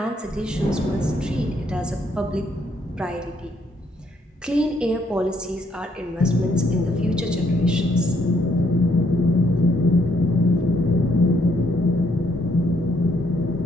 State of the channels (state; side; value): normal; both; correlation 0.71